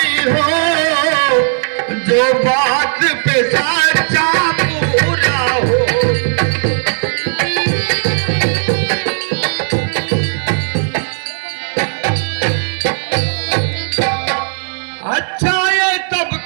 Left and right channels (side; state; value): left; silent; digital silence